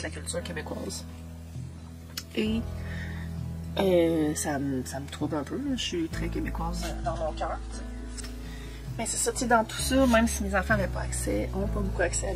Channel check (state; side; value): identical; both; correlation 1.00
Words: la culture québécoise. Et ça me trouble un peu, là. Je suis très québécoise dans mon cœur. Mais c'est ça, tu sais, dans tout ça, même si mes enfants n'ont pas beaucoup accès à